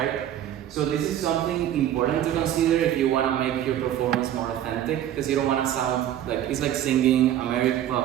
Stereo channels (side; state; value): left; quieter; 11.5 dB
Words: So this is something important to consider if you want to make your performance more authentic, because you don't want to sound like it's like singing American.